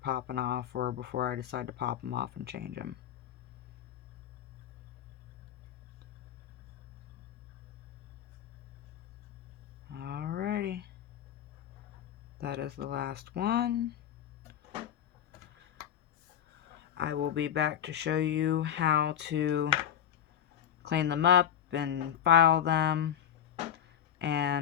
popping off, or before I decide to pop them off and change them. Alrighty, that is the last one. I will be back to show you how to clean them up and file them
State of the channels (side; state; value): right; quieter; 9.8 dB